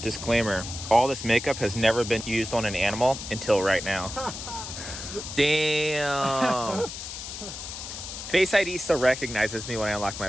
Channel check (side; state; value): left; noise; hiss, 9 dB below the sound